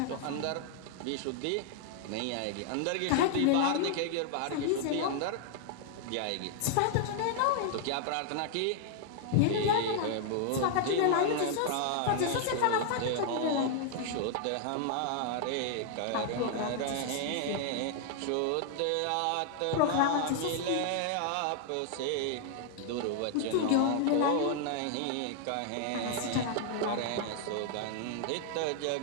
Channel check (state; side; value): different; both; correlation -0.01